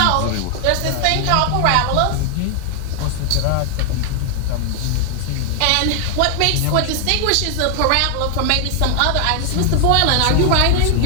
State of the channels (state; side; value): different; both; correlation 0.00